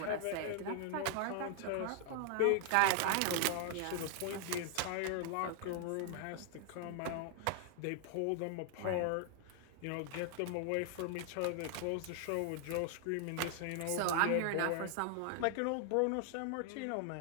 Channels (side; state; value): both; different; correlation 0.00